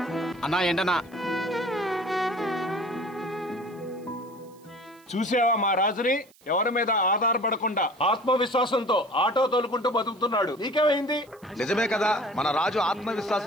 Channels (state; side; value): noise; right; hiss, 29 dB below the sound